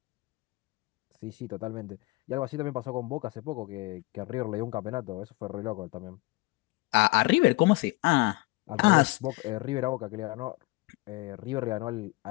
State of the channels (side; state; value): right; quieter; 22.8 dB